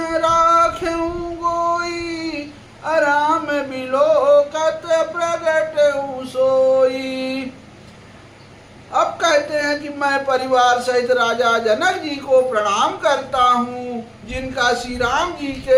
राखें गोई अराम बिलोकत प्रगट सोई। अब कहते हैं कि मैं परिवार सहित राजा जनक जी को प्रणाम करता हूँ जिनका श्री राम जी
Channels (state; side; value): identical; both; correlation 1.00